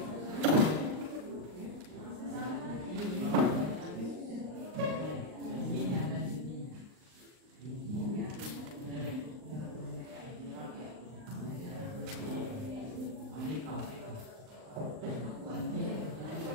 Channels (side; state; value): left; late; 39 ms